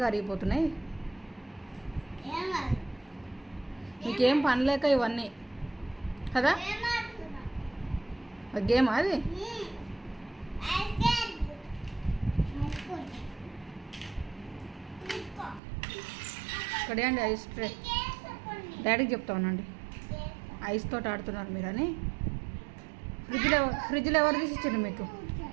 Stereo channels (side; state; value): left; drops out; at 15.6 s